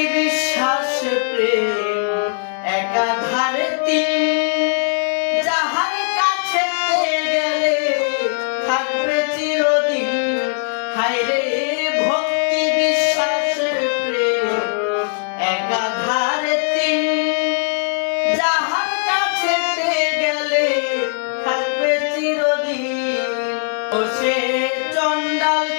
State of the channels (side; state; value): right; silent; digital silence